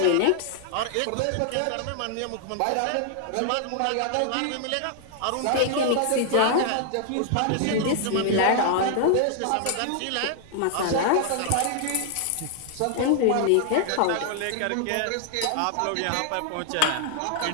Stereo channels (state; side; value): different; both; correlation 0.00